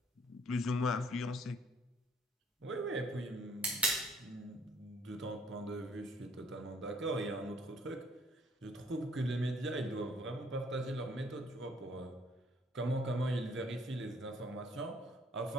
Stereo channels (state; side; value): normal; both; correlation 0.62